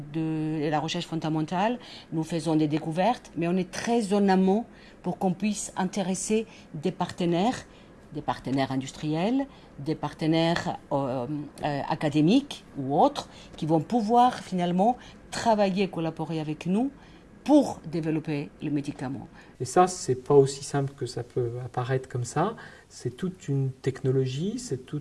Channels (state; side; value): identical; both; correlation 1.00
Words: de la recherche fondamentale, nous faisons des découvertes, mais on est très en amont pour qu'on puisse intéresser des partenaires industriels, des partenaires académiques ou autres, qui vont pouvoir finalement travailler, collaborer avec nous pour développer le médicament. Et ça, c'est pas aussi simple que ça peut apparaître comme ça. C'est toute une technologie, c'est tout